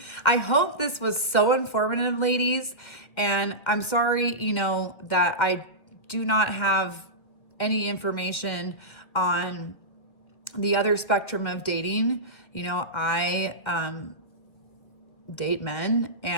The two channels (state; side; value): late; right; 2.1 ms